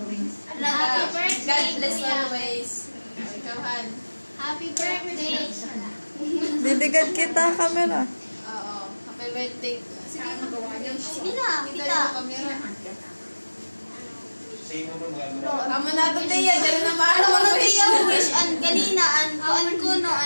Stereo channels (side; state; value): both; inverted; correlation -1.00